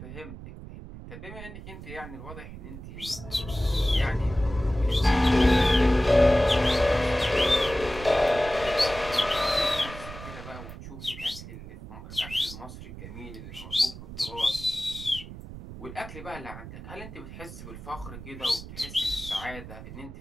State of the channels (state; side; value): noise; right; rumble, 13 dB below the sound